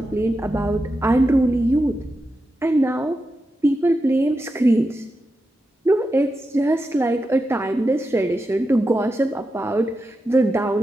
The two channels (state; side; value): normal; both; correlation 0.89